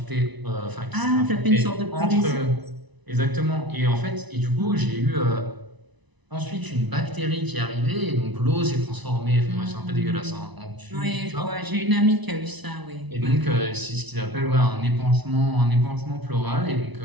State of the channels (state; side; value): late; left; 1.0 ms